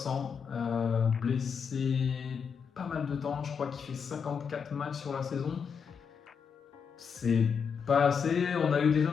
blessé pas mal de temps, je crois qu'il fait 54 matchs sur la saison. C'est pas assez, on a eu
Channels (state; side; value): quieter; right; 6.5 dB